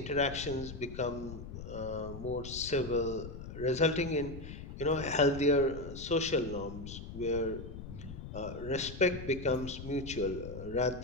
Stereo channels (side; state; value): left; noise; rumble, 10 dB below the sound